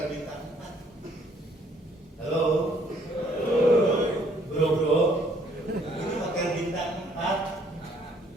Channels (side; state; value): both; normal; correlation 0.63